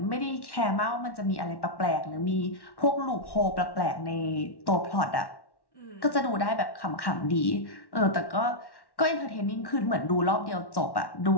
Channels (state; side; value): late; right; 1.1 ms